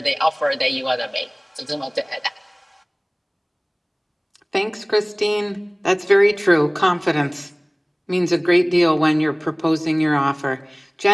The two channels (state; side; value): identical; both; correlation 1.00